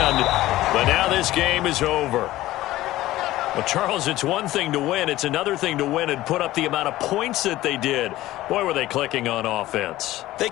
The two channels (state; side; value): quieter; right; 16.1 dB